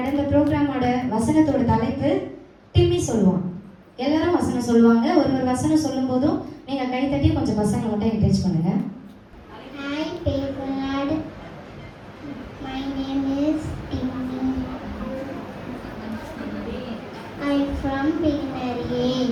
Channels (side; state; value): both; identical; correlation 1.00